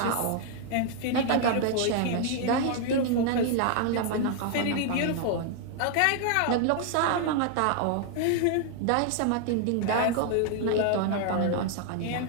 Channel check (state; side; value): different; both; correlation 0.00